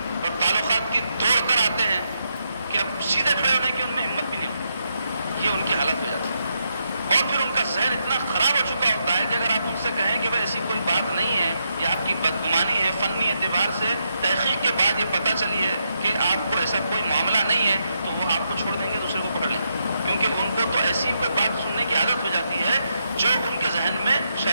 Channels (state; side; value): inverted; both; correlation -0.81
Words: اور تعلقات کی توڑ کر آتے ہیں کہ اب سیدھے کھڑے ہونے کی ان میں ہمت بھی نہیں ہوتی. یہ ان کی حالت ہو جاتی ہے. اور پھر ان کا ذہن اتنا خراب ہو چکا ہوتا ہے کہ اگر آپ ان سے کہیں کہ بھائی ایسی کوئی بات نہیں ہے، یہ آپ کی بدگمانی ہے، فنی اعتبار سے تحقیق کے بعد یہ پتہ چلی ہے کہ آپ کو ایسا کوئی معاملہ نہیں ہے، تو وہ آپ کو چھوڑ دیں گے، دوسرے کو پکڑ لیں گے. کیونکہ ان کو تو ایسی کوئی بات سننے کی عادت ہو جاتی ہے جو ان کے ذہن میں